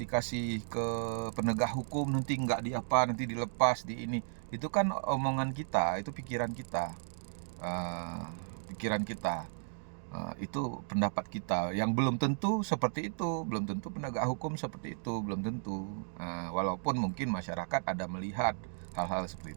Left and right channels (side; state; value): left; silent; digital silence